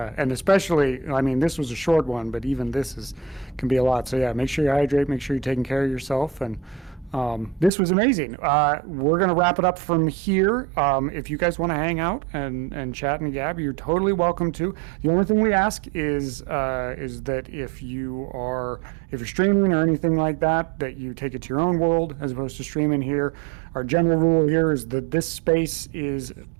and especially, I mean, this was a short one, but even this can be a lot. So yeah, make sure you hydrate, make sure you're taking care of yourself, and this was amazing. We're going to wrap it up from here. If you guys want to hang out and chat and gab, you're totally welcome to. The only thing we ask is that if you're streaming or anything like that, that you take it to your own world as opposed to streaming here. Our general rule here is that this space is,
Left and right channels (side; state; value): left; drops out; at 7.7 s